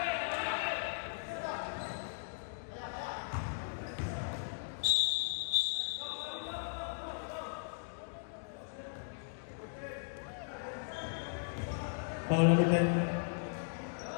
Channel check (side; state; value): right; silent; digital silence